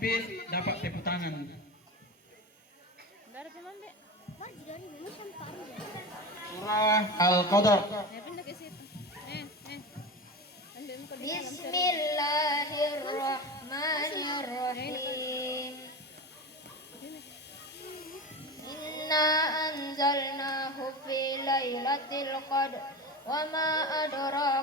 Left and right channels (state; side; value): normal; both; correlation 0.26